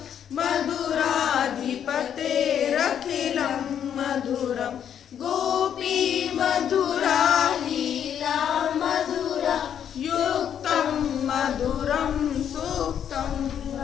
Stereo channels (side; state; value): right; quieter; 9.0 dB